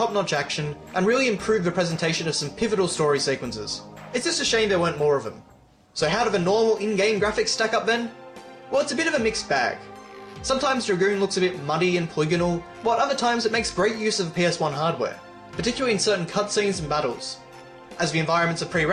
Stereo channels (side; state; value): both; identical; correlation 1.00